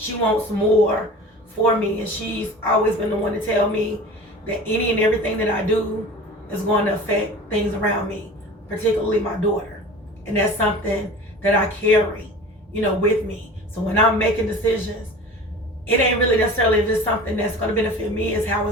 wants more for me, and she's always been the one to tell me that any and everything that I do is going to affect things around me, particularly my daughter. And that's something that I carry, you know, with me. So when I'm making decisions, it ain't really necessarily if it's something that's going to benefit me, it's how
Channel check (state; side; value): normal; both; correlation 0.38